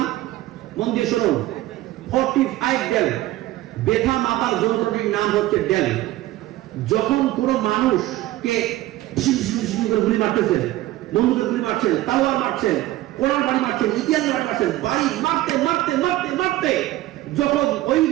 মন দিয়ে শুনুন। 45 দিন ব্যথা মাপার যন্ত্রটির নাম হচ্ছে ডেল। যখন কোন মানুষকে গুলি মারতেছে, বন্দুকের গুলি মারছে, তালোয়ার মারছে, কোরআন বাড়ি মারছে, ইতিহাস বাড়ি মারছে, বাড়ি মারতে মারতে মারতে মারতে যখন ওই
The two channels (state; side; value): quieter; left; 16.3 dB